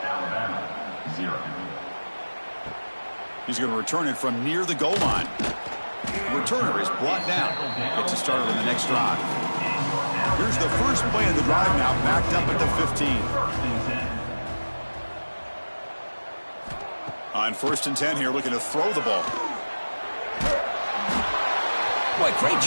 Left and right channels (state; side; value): inverted; both; correlation -1.00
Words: He's going to return it from near the goal line. The returner is brought down. Gets it started on the next drive. Here's the first play of the drive now, backed up at the 15. On 1st and 10 here, looking to throw the ball. Boy, great